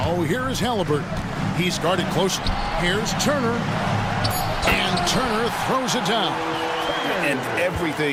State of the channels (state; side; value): identical; both; correlation 1.00